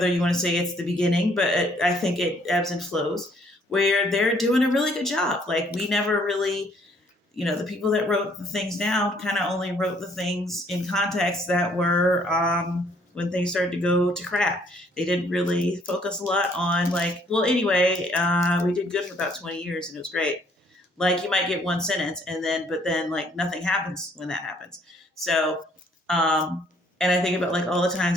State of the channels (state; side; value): normal; both; correlation 0.63